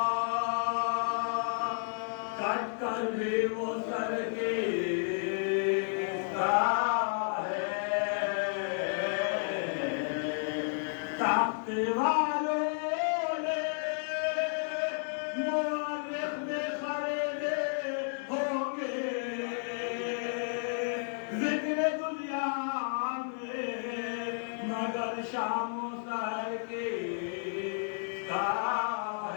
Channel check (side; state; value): right; silent; digital silence